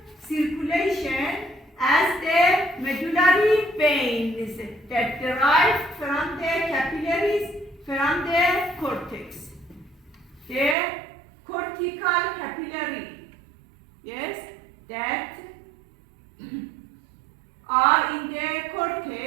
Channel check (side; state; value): left; drops out; at 10.8 s